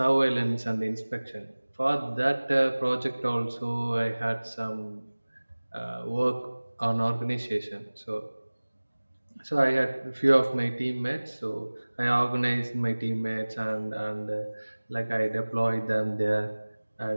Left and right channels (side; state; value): both; inverted; correlation -1.00